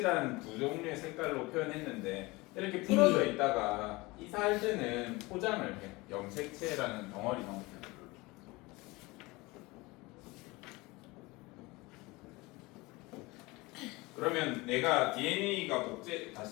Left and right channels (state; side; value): quieter; right; 23.0 dB